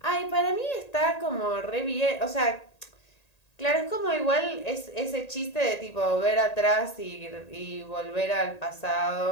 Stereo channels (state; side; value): late; right; 1.8 ms